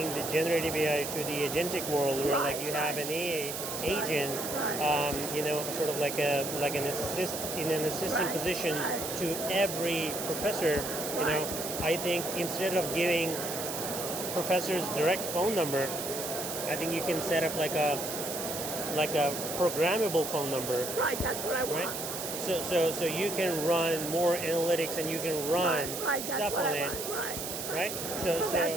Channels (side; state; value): right; noise; hiss, 5 dB below the sound